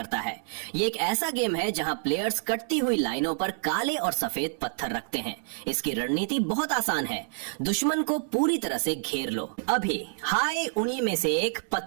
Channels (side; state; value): left; silent; 59 dB below the other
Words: है। ये एक ऐसा गेम है जहां प्लेयर्स कटती हुई लाइनों पर काले और सफेद पत्थर रखते हैं। इसकी रणनीति बहुत आसान है, दुश्मन को पूरी तरह से घेर लो। अभी हाय उन्हीं में से एक